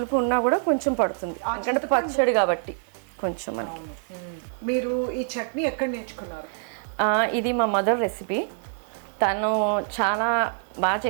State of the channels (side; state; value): left; silent; digital silence